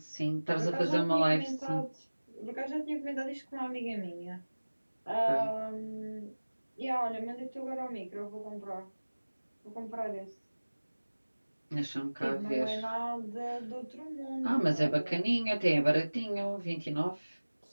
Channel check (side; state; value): both; inverted; correlation -1.00